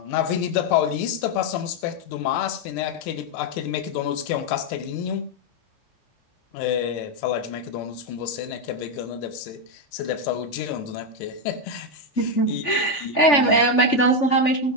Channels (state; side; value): late; right; 3.5 ms